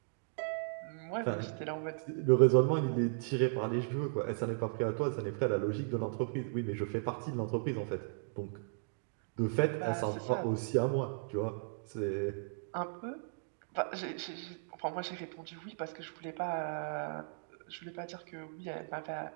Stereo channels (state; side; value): silent; left; digital silence